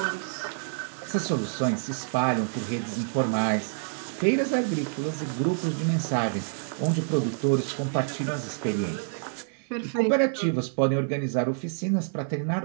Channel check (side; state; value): left; silent; digital silence